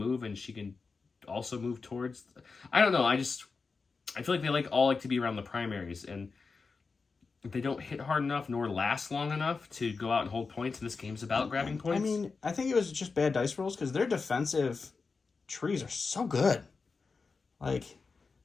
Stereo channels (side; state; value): right; quieter; 4.6 dB